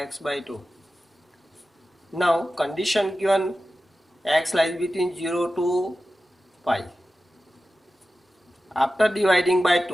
by 2. Now condition given x lies between 0 to pi. After dividing by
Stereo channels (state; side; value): normal; both; correlation 0.94